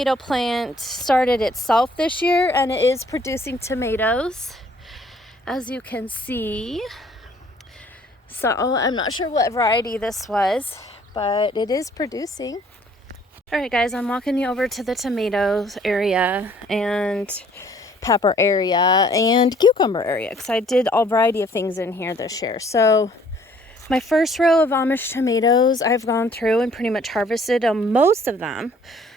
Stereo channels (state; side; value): normal; both; correlation 0.59